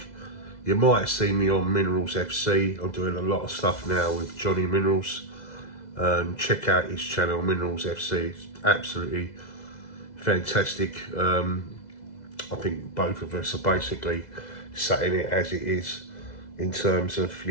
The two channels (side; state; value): right; late; 2.0 ms